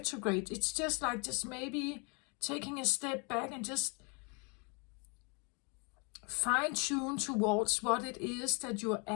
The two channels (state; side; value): quieter; right; 33.6 dB